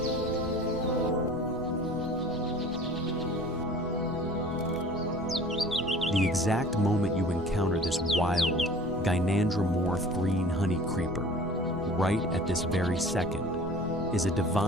The exact moment you encounter this wild, gynandromorph green honeycreeper, right at this very second, is a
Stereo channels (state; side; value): noise; right; rumble, 16 dB below the sound